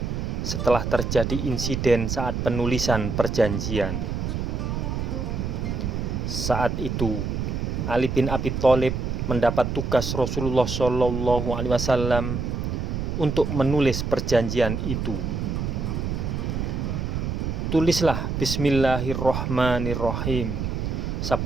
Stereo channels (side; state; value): right; noise; rumble, 2 dB below the sound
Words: setelah terjadi insiden saat penulisan perjanjian. Saat itu, Ali bin Abi Thalib mendapat tugas Rasulullah SAW untuk menulis perjanjian itu. Tulislah Bismillahirrahmanirrahim,